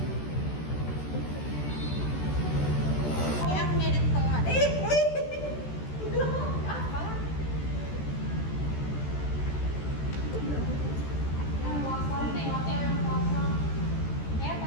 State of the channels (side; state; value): right; late; 14 ms